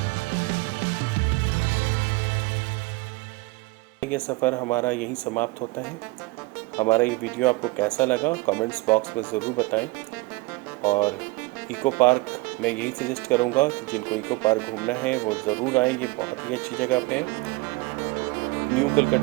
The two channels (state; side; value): quieter; left; 24.0 dB